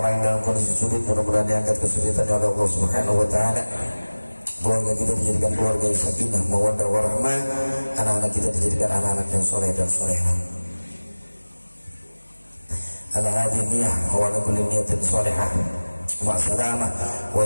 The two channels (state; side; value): inverted; both; correlation -1.00